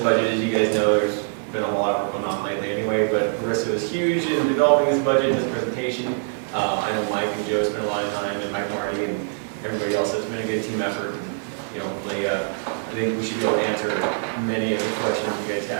As you guys know, there's been a whole lot of work going on lately anyway, but Marissa was huge in developing this budget and this presentation. I know Mike and Joe spent a lot of time, and Mike Marty and everybody else. It's been a good team effort. And, you know, hopefully, I think we should be able to answer many of the questions you guys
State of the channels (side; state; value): left; silent; digital silence